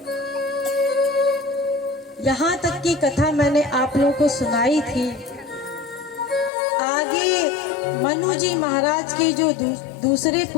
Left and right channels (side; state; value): right; drops out; at 6.5 s